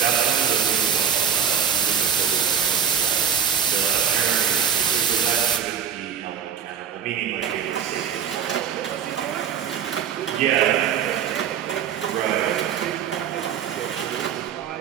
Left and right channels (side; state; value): left; quieter; 8.0 dB